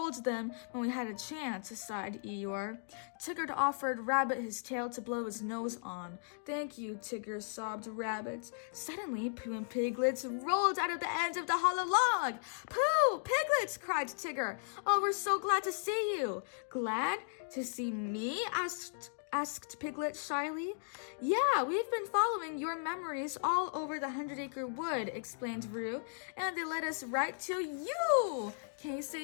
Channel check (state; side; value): silent; right; digital silence